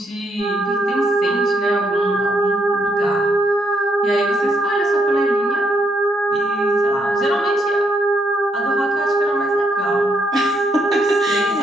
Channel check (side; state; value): both; normal; correlation 0.75